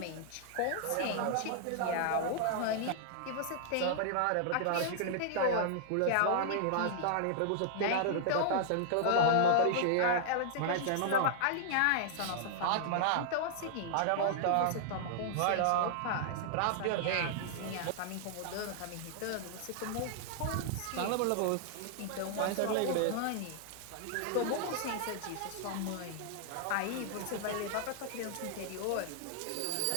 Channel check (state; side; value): different; both; correlation -0.01